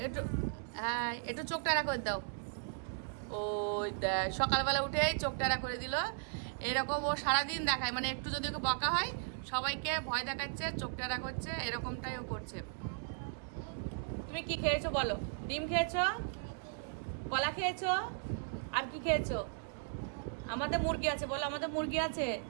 একটু হ্যাঁ, একটু চোখ টানা করে দাও। ওই দেখ সকালবেলা উঠেই চোখ টানা করে দিল। এরকম ও সারাদিন দেখায়, মানে একটু যদি ওকে বকা হয় সবাইকে ভয় দেখাচ্ছে, চোখ টানা করছে, এরকমটাই ও করছে। তুমি কি খেয়েছো বলো? ডিম খেয়েছো, কলা খেয়েছো, আর কি খেয়েছো? আমাদের মুরগি আছে, বলো আমাদের মুরগি আছে।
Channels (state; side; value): silent; left; digital silence